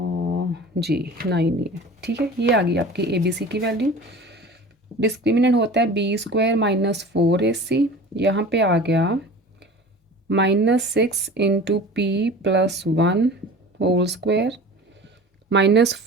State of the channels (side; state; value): both; normal; correlation 0.39